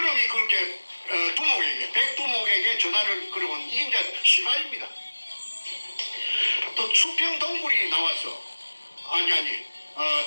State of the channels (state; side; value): inverted; both; correlation -1.00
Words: 그렇게 백두목에게 전화를 걸어온 이게 이제 시발입니다. 또 수평 동굴이 나와서